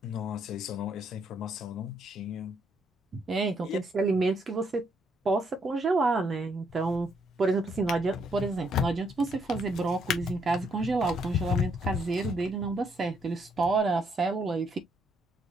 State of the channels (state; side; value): normal; both; correlation 0.73